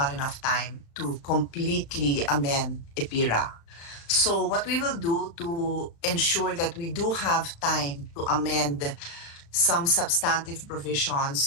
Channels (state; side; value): late; right; 35 ms